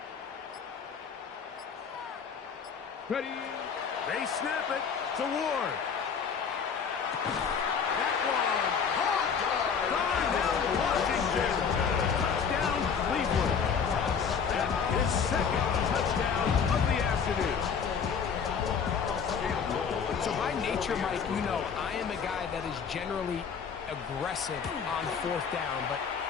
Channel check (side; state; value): right; quieter; 6.5 dB